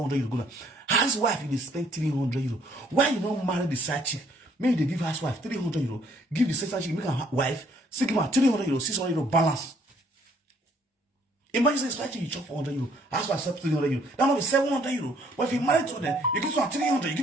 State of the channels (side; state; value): both; normal; correlation 0.64